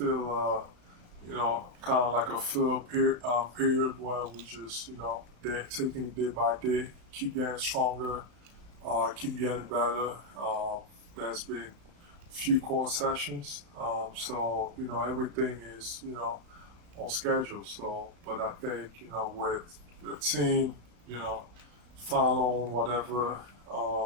kind of like a fill period where we just, taking it day by day, keep getting stronger, keep getting better. There's been few core sessions, so everything is on schedule. So, but I think with the team, following whatever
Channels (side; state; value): left; late; 35 ms